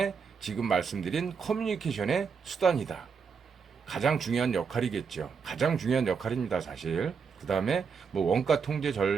지금 말씀드린 커뮤니케이션의 수단이다. 가장 중요한 역할이겠죠. 가장 중요한 역할입니다, 사실. 그 다음에 뭐 원가 통제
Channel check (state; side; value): quieter; left; 5.9 dB